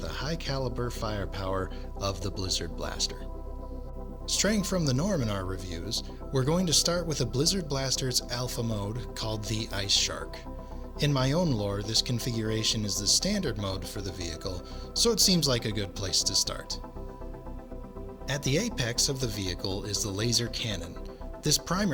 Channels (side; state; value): both; identical; correlation 1.00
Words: the high caliber firepower of the Blizzard Blaster. Straying from the norm in our reviews, we're going to start with a Blizzard Blaster's alpha mode called the Ice Shark. In my own lore, this configuration is the standard mode for the vehicle, so it seems like a good place to start. At the apex of the vehicle is the laser cannon. This